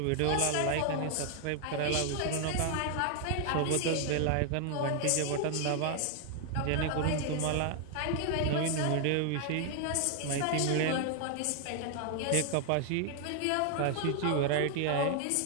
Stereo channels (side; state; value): both; different; correlation 0.00